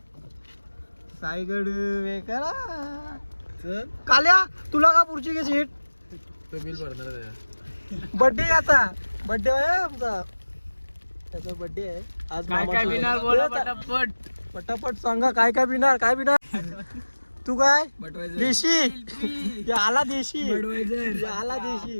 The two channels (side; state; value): both; inverted; correlation -1.00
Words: साईगड करा काल्या तुला का पुढची घे सीट तो बिल भरणार बर्थडे आता बर्थडे आहे आमचा त्याचा बर्थडे आहे आज. काय काय बिनार बोला पटापट पटापट सांगा काय काय बिनार तू काय देशी या आला देशी या आला